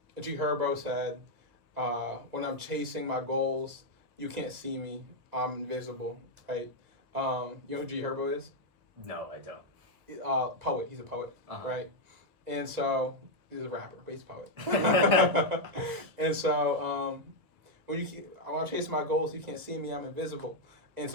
G Herbo said, when I'm chasing my goals, you can't see me, I'm invisible, right? You know who G Herbo is? No, I don't. Poet, he's a poet, right? And so, he's a rapper, but he's a poet. And so, when I'm chasing my goals, you can't see me, I'm invisible. And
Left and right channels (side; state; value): left; late; 1.6 ms